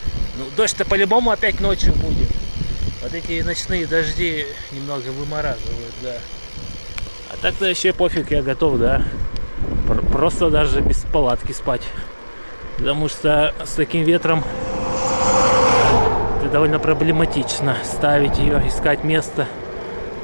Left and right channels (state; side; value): inverted; both; correlation -1.00